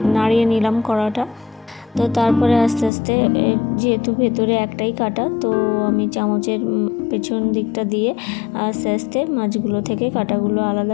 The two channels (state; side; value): drops out; right; at 2.9 s